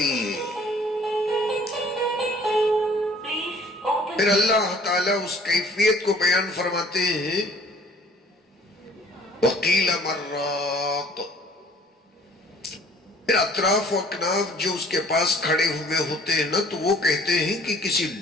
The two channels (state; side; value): normal; both; correlation 0.54